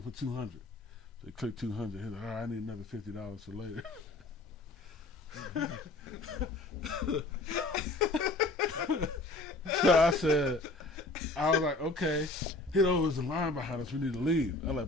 to put 200. So he clicked 200. He was like, all right, I need another $50 for later. So I was like, okay. There's a line behind us. We need to leave. I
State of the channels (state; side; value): quieter; right; 3.0 dB